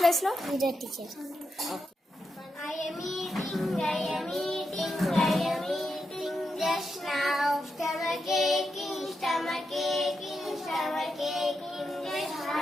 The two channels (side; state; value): both; normal; correlation 0.85